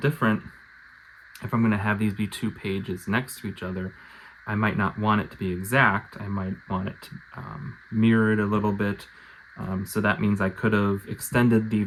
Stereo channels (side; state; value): both; identical; correlation 1.00